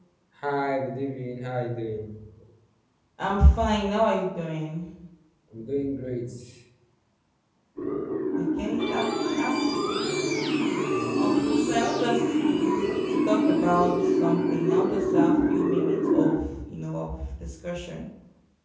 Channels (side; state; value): both; identical; correlation 1.00